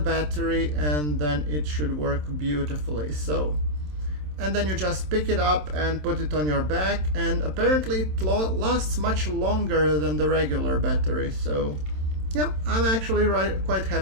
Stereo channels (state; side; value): late; left; 27 ms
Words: and then it should work beautifully. So, and then you just pick it up and put it on your back, and apparently it lasts much longer than the regular battery. So yeah, I'm actually quite